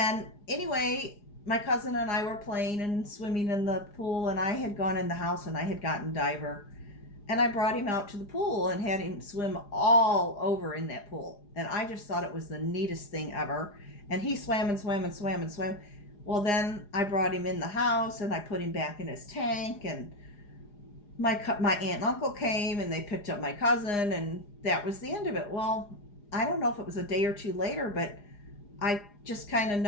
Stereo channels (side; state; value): right; late; 4.9 ms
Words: anyway, my cousin and I were playing and swimming in the pool, and I had gone in the house and I had gotten Diver. And I brought him out to the pool and had him swim all over in that pool. And I just thought it was the neatest thing ever. And he swam and swam and swam and swam. Well, then I brought him in the house, and I put him back in his tank, and my aunt and uncle came, and they picked up my cousin, and that was the end of it. Well, I don't know if it was a day or two later, but I just kind of